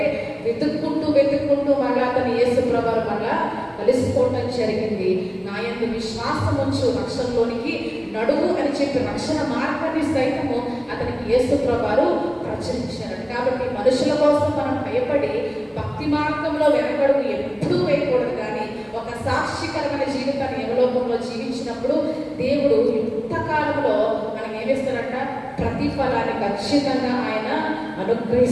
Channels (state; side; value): identical; both; correlation 1.00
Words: వెతుక్కుంటూ మళ్ళా అతను యేసు ప్రభువు మళ్ళా కలిసిపోవటం జరిగింది. నా యందు విశ్వాసం ఉంచు రక్షణలోనికి నడువు అని చెప్పి రక్షణ మార్గాన్ని సైతము అతనికి యేసు ప్రభువు ప్రచురించారు. కాబట్టి మనుషుల కోసం మనం భయపడి భక్తి మార్గంలో వెనకడుగు ఎప్పుడూ వేయకూడదు. కానీ ఒక సాక్షికరమైన జీవితాన్ని యమలోకంలో జీవించినప్పుడు దేవుడు యుక్తకాలంలో మనం ఏమిస్తారంట, ప్రతిఫలాన్ని ఖచ్చితంగా ఆయన